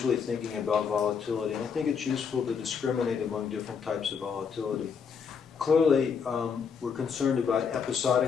thinking about volatility, and I think it's useful to discriminate among different types of volatility. Clearly, we're concerned about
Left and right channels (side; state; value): right; quieter; 6.4 dB